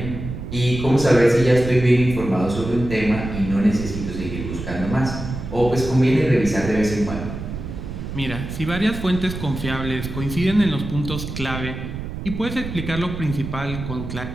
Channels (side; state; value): right; noise; rumble, 7 dB below the sound